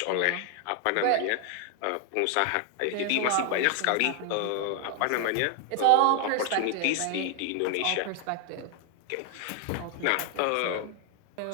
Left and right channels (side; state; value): both; different; correlation 0.00